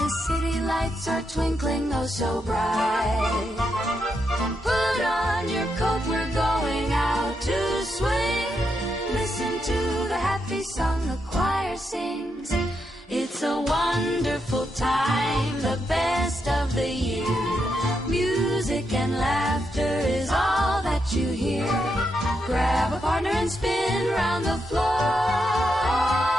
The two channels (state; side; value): normal; both; correlation 0.82